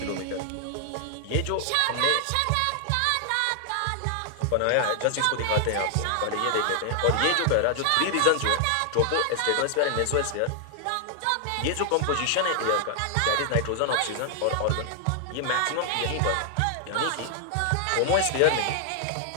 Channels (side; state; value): both; different; correlation 0.00